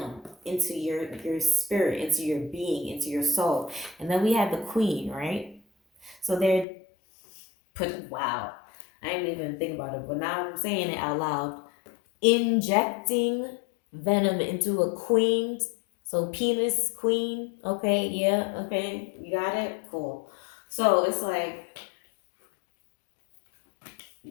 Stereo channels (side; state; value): right; drops out; at 6.7 s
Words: into your spirit, into your being, into your soul. And then we have the queen, right? So they're wow, I didn't even think about it, but now I'm saying it out loud. Injecting venom into a queen. So penis queen. Okay, yeah, okay, you got it. Cool. So it's like